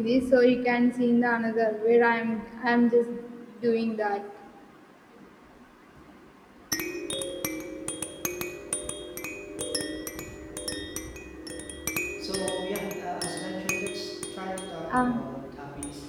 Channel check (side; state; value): both; identical; correlation 1.00